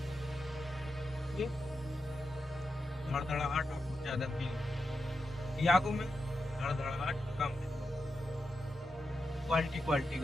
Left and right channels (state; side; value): normal; both; correlation 0.88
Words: धड़धड़ाहट आपको ज्यादा फील, यागो में धड़धड़ाहट कम है। क्वालिटी